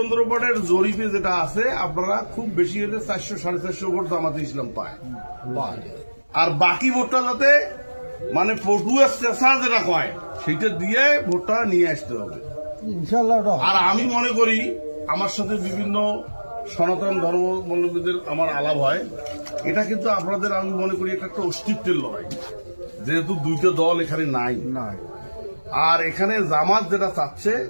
জরিপে যেটা আছে আপনারা খুব বেশি হলে 400-450 ভোট জামাতে ইসলাম পায়, আর বাকি ভোটটা যাতে মানে পটুয়া চেষা যেটা কয় সেটা দিয়ে ভোটটা নিয়ে আসতে হবে ইনশাআল্লাহ। আর আমি মনে করি আমার সাথে বিভিন্ন সনাতন ধর্মাবলম্বীদের আমার আলাপ হয়, এটা কিন্তু আপনাদের আমি মনে করি এটা একটা অস্তিত্বের লড়াই, যেহেতু দুইটা দল এখানে নাই। আর এখানে জামাত যেটা চাচ্ছে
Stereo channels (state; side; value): inverted; both; correlation -1.00